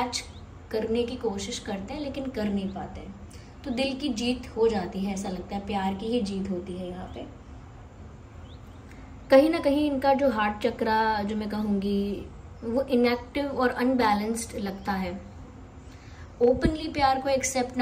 करने की कोशिश करते हैं, लेकिन कर नहीं पाते हैं। तो दिल की जीत हो जाती है, ऐसा लगता है प्यार की ही जीत होती है यहाँ पे। कहीं ना कहीं इनका जो हार्ट चक्रा जो मैं कहूँगी वो इनएक्टिव और अनबैलेंस्ड लगता है। ओपनली प्यार को एक्सेप्ट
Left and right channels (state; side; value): identical; both; correlation 1.00